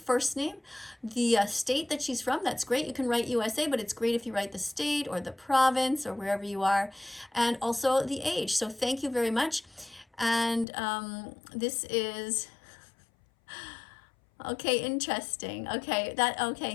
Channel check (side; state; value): right; drops out; at 10.7 s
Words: name, the state that she's from. That's great. You can write USA, but it's great if you write the state or the province or wherever you are, and also the age. So thank you very much. And this is okay, interesting.